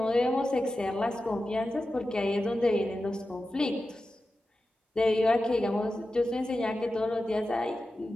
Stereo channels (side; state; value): both; normal; correlation 0.92